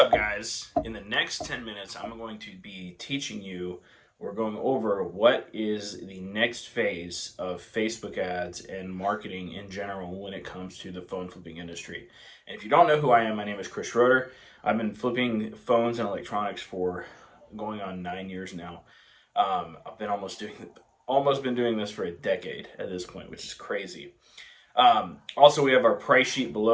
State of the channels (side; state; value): both; identical; correlation 1.00